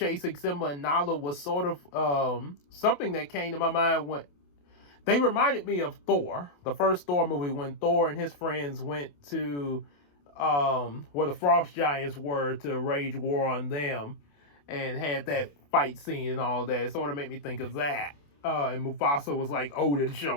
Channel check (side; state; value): right; late; 28 ms